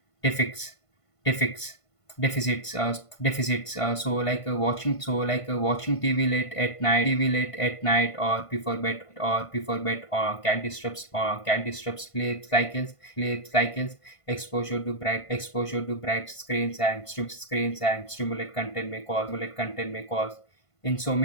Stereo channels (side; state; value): right; late; 1.5 ms